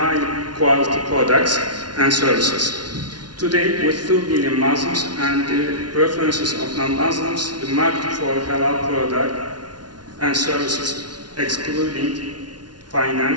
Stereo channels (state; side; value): late; left; 0.69 ms